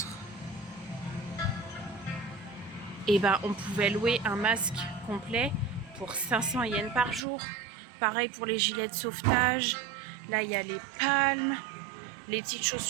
Et on pouvait louer un masque complet pour 500 yens par jour. Pareil pour les gilets de sauvetage. Là il y a les palmes, les petites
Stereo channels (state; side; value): drops out; left; at 7.2 s